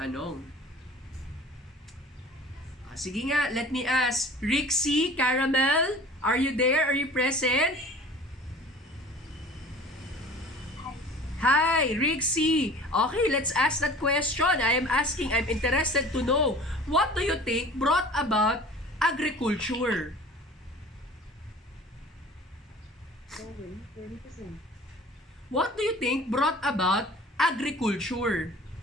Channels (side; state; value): both; normal; correlation 0.44